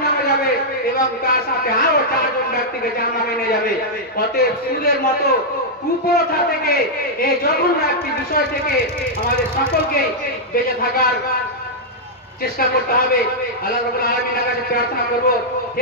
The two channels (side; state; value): both; normal; correlation -0.06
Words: যাবে এবং তার সাথে আরো চারজন ব্যক্তিকে জাহান্নামে নিয়ে যাবে। অতএব সুদের মতো কুপ্রথা থেকে, এই জঘন্য একটি বিষয় থেকে আমাদের সকলকে বেঁচে থাকার চেষ্টা করতে হবে। আল্লাহ রাব্বুল আলামিনের কাছে প্রার্থনা করব,